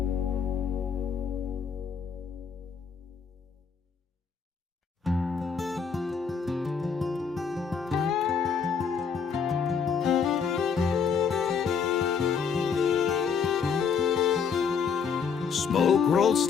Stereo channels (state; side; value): quieter; right; 6.3 dB